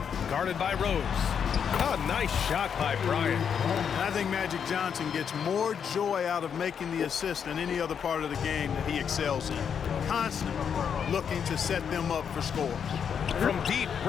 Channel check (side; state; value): right; quieter; 7.4 dB